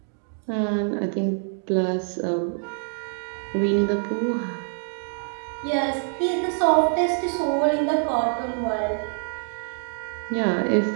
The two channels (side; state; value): left; silent; digital silence